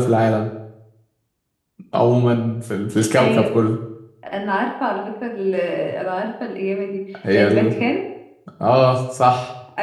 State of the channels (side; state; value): both; identical; correlation 1.00